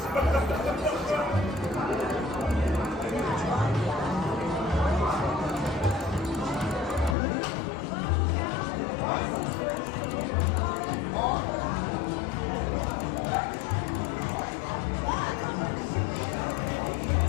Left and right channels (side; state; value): right; drops out; at 7.2 s